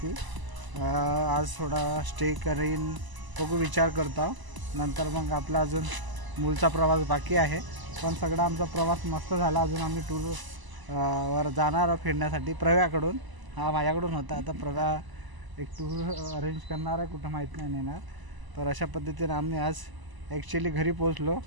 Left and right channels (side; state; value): left; late; 1.0 ms